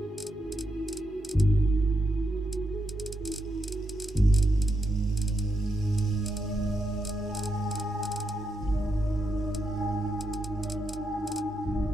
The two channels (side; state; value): both; normal; correlation 0.83